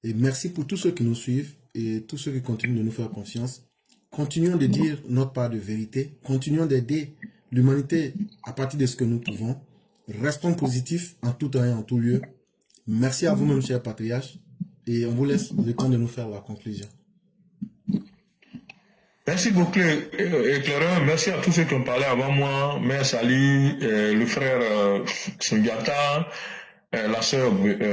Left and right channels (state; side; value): identical; both; correlation 1.00